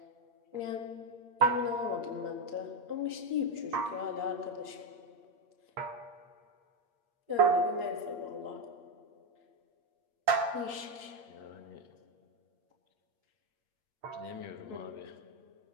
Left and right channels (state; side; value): late; left; 8.6 ms